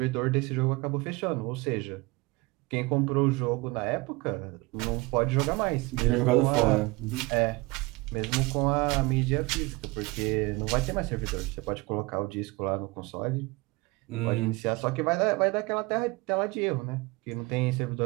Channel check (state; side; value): quieter; left; 24.3 dB